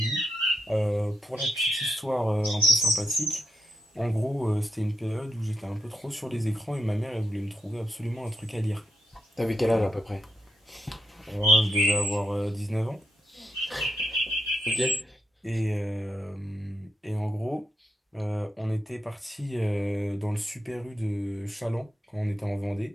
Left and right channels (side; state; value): both; normal; correlation 0.82